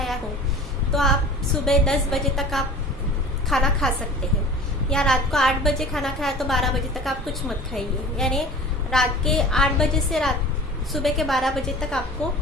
हो, तो आप सुबह 10 बजे तक आप खाना खा सकते हैं, या रात को 8 बजे खाना खाया तो 12 बजे तक आप कुछ मत खाइए। यानी रात के 8 बजे से सुबह के 12 बजे तक आपको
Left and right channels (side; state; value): both; normal; correlation 0.41